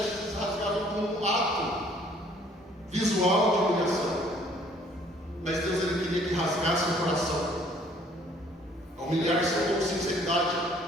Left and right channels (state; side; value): normal; both; correlation 0.59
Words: eles rasgavam como um ato visual de humilhação. Mas Deus, ele queria que rasgasse o coração. Humilhar-se com sinceridade,